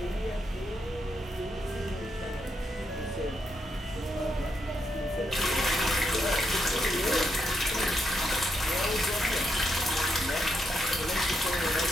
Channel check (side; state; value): both; normal; correlation 0.79